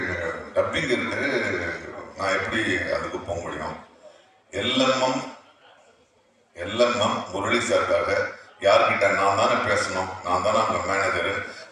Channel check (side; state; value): both; identical; correlation 1.00